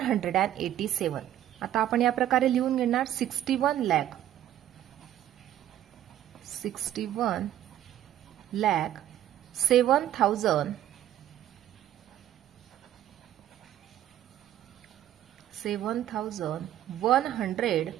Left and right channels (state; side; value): quieter; left; 12.0 dB